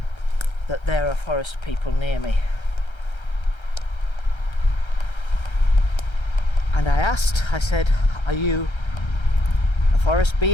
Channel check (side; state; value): right; late; 1.3 ms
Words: that there are forest people near me. And I said, are you a forest